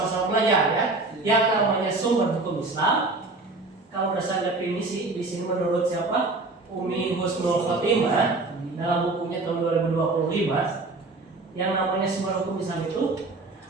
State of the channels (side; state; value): left; quieter; 3.3 dB